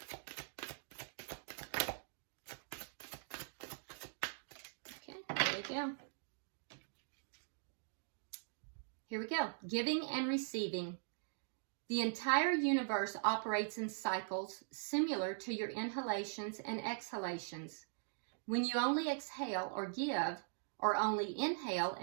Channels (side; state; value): left; silent; digital silence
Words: Okay, there we go. Here we go. Giving and receiving. The entire universe operates in cycles similar to your inhalations and exhalations. When you only exhale or give, or only inhale